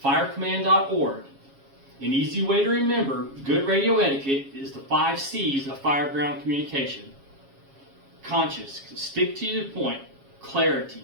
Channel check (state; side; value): late; left; 7.3 ms